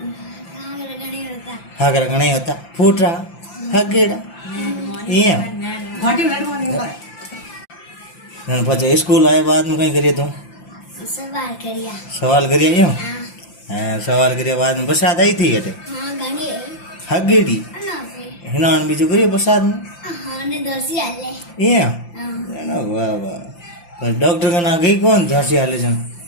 हागर घणी होता हागर गणे होता फूटरा हगेड़ा ये नन पछे स्कूल आए बाद में कई करियो तू सवाल करिया सवाल करियो यो हाँ हाँ सवाल करियो बाद में बरसात आई थी अटे हाँ घणी हगेड़ी ना पे हिनान बीजू करियो बरसात में हाँ ने दोसी आले ये हाँ ना वाह वाह पर डॉक्टर का ना गई कौन झांसी हाले जन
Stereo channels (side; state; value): right; late; 5.8 ms